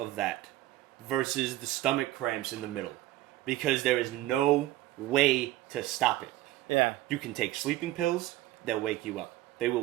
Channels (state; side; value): quieter; left; 15.8 dB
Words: that versus the stomach cramps in the middle, because there is no way to stop it. Yeah. You can take sleeping pills, they'll wake you up.